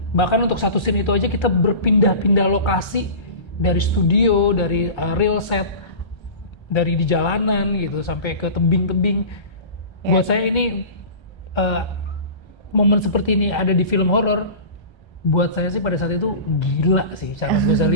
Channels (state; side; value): late; right; 1.3 ms